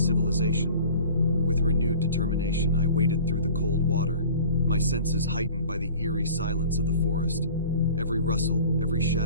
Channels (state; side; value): inverted; both; correlation -0.43